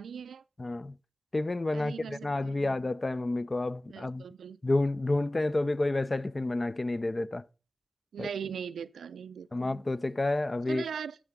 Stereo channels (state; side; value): normal; both; correlation 0.97